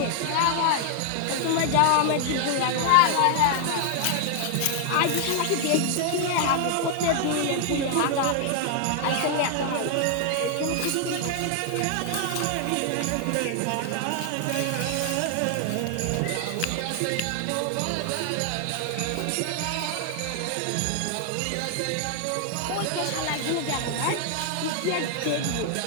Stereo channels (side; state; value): both; different; correlation 0.00